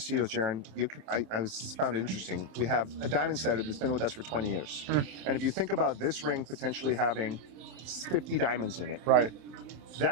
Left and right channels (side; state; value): left; late; 27 ms